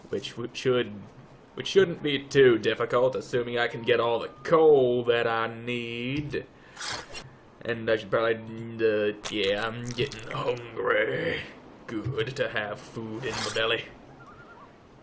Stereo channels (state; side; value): identical; both; correlation 1.00